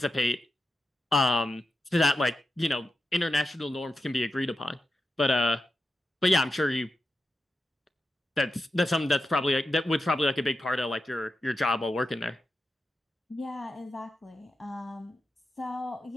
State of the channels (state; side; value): normal; both; correlation 0.89